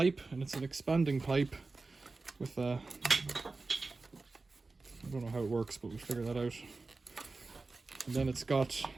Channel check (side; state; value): left; quieter; 3.7 dB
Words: and it's an expanding pipe with a, I don't know how it works, but we'll figure that out. And then it's got